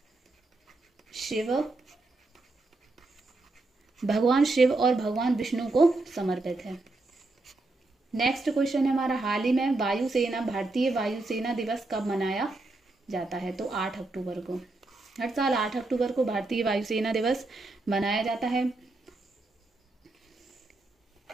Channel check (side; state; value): left; quieter; 3.1 dB